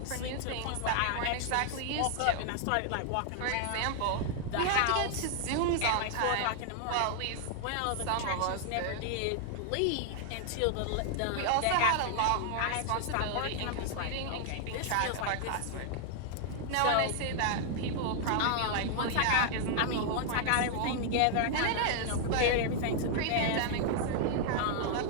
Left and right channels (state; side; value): different; both; correlation 0.00